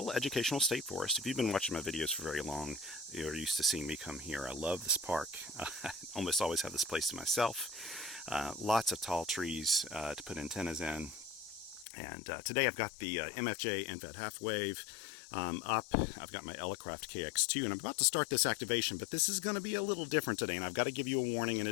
Educational State Forest. If you've been watching my videos for very long, you're used to seeing me come here. I love this park. I almost always have this place to myself. Lots of tall trees to put antennas in. And today I've got the MFJ NVED half wave up. I've got my Elecraft KX2, and I'm about to start this activation, but this is going to be a little different today, and I've got to give you a warning in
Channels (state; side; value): drops out; right; at 11.9 s